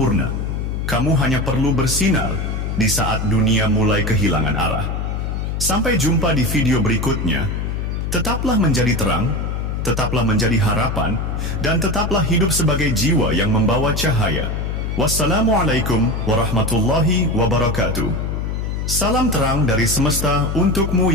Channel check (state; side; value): noise; left; hum, 2 dB below the sound